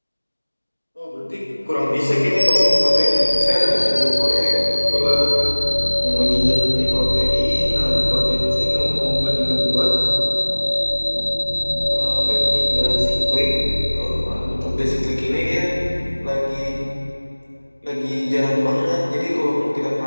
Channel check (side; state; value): both; inverted; correlation -1.00